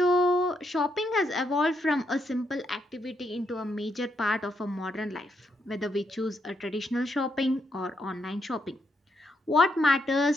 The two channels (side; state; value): both; normal; correlation 0.78